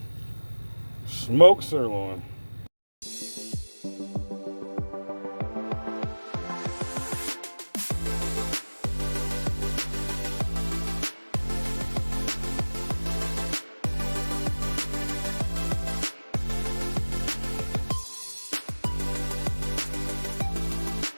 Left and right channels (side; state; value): both; inverted; correlation -1.00